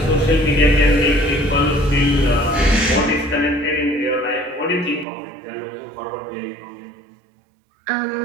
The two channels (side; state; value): left; drops out; at 5.1 s